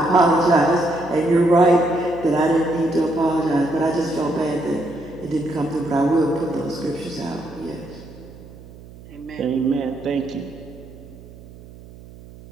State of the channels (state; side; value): noise; right; hum, 19 dB below the sound